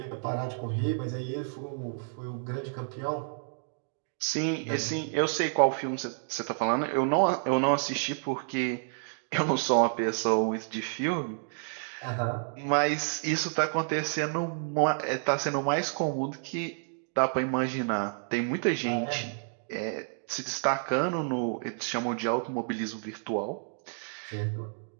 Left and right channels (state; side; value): silent; left; digital silence